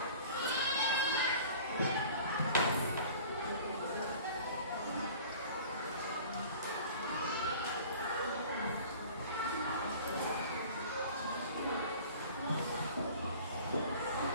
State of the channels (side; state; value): both; inverted; correlation -0.44